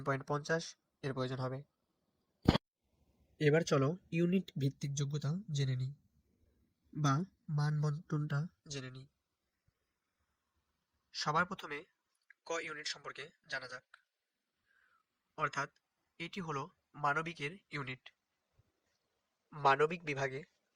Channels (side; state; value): both; identical; correlation 1.00